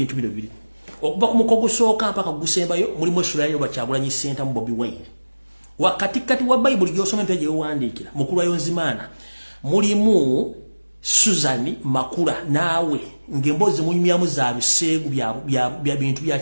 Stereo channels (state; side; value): inverted; both; correlation -1.00